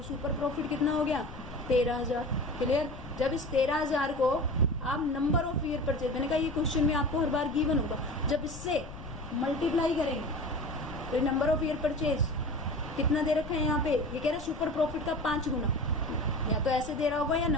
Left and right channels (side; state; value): left; noise; rumble, 13 dB below the sound